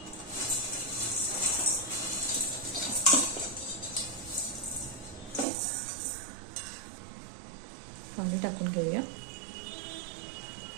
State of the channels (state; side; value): drops out; left; at 5.5 s